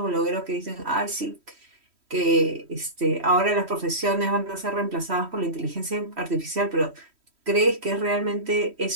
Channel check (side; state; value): left; late; 3.1 ms